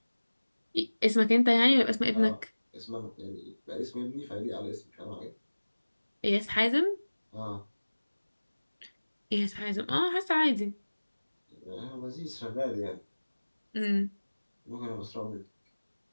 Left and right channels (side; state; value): both; inverted; correlation -1.00